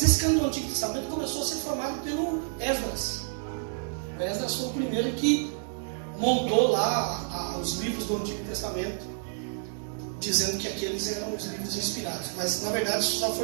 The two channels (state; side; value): silent; left; digital silence